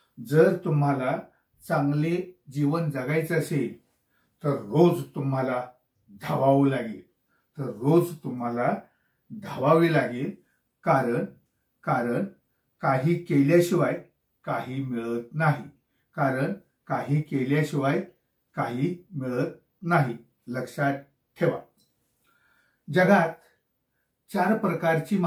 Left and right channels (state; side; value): identical; both; correlation 1.00